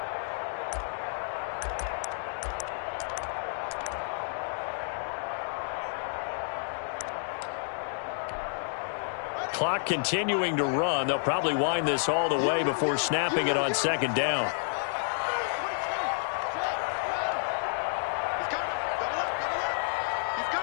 Clock continuing to run. They'll probably wind this all the way before snapping it on 2nd down. He's coming. Double up, double up. He's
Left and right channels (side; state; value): right; silent; digital silence